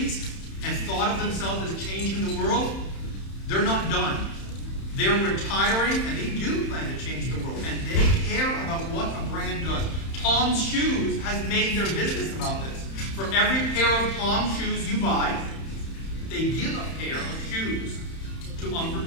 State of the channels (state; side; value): late; right; 31 ms